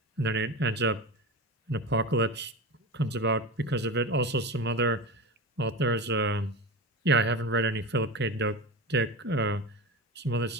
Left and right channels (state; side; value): normal; both; correlation 0.26